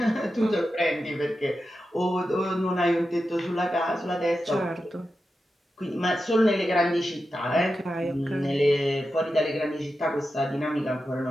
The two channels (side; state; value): both; normal; correlation 0.90